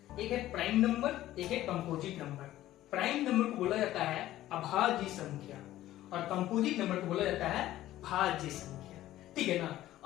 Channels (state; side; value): quieter; right; 14.4 dB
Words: एक है प्राइम नंबर, एक है कंपोजिट नंबर। प्राइम नंबर को बोला जाता है अभाज्य संख्या और कंपोजिट नंबर को बोला जाता है भाज्य संख्या, ठीक है ना।